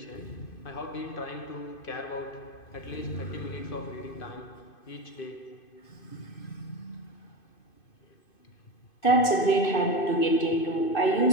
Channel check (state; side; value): late; right; 2.5 ms